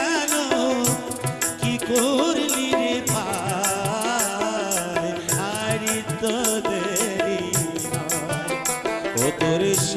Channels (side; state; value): both; identical; correlation 1.00